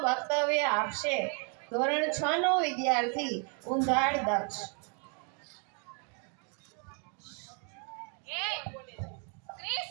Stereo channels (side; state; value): left; quieter; 38.6 dB